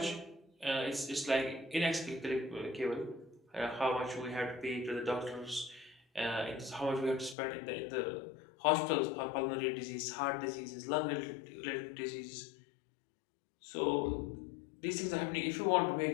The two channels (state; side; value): drops out; right; at 7.4 s